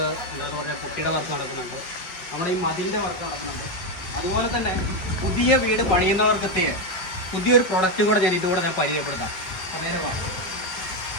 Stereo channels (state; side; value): late; right; 5.0 ms